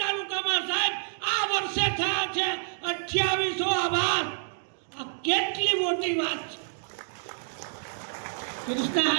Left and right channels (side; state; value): left; silent; digital silence